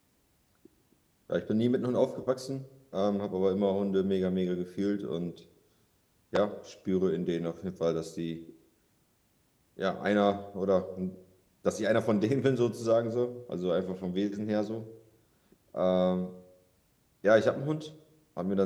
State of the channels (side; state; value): both; identical; correlation 1.00